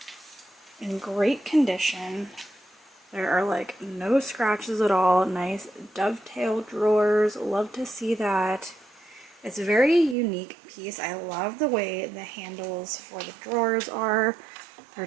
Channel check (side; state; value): left; drops out; at 10.2 s